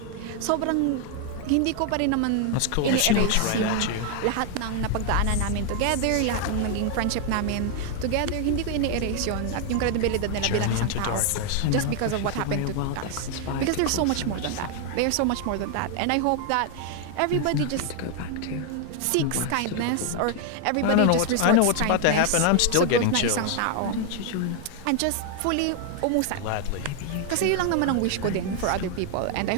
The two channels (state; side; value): different; both; correlation 0.00